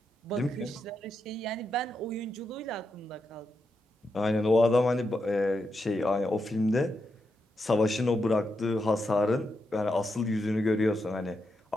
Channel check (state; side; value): normal; both; correlation 0.85